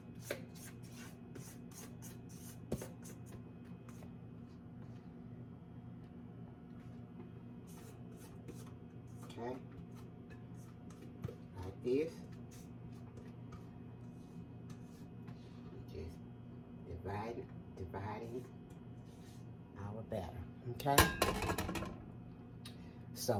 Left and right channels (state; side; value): identical; both; correlation 1.00